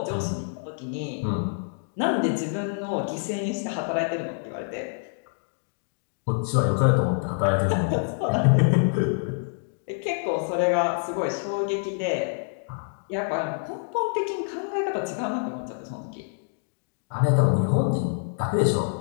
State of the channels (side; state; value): right; silent; digital silence